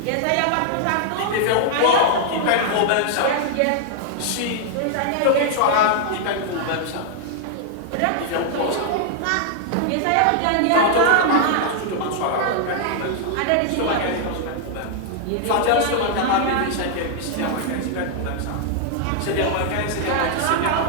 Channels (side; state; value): both; different; correlation 0.00